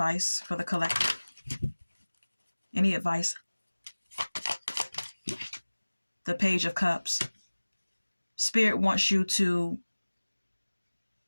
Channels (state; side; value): inverted; both; correlation -1.00